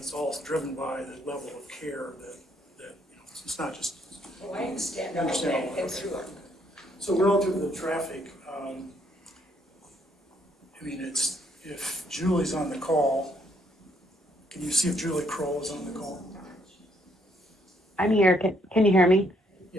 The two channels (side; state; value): both; normal; correlation 0.70